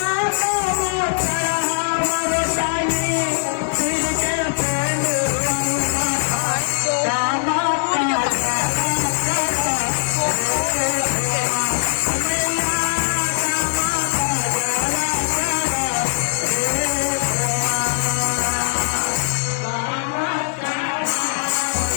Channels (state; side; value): silent; right; digital silence